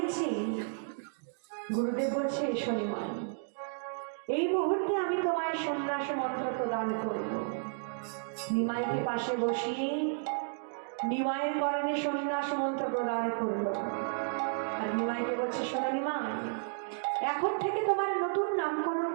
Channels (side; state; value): left; silent; digital silence